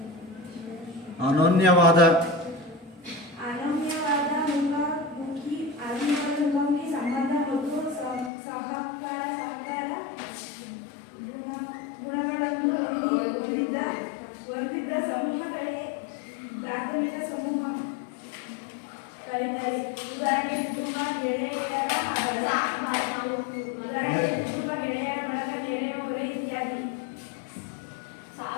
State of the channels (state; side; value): drops out; right; at 8.3 s